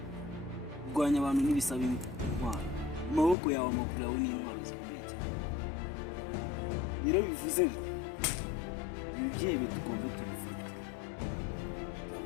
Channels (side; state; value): right; drops out; at 3.4 s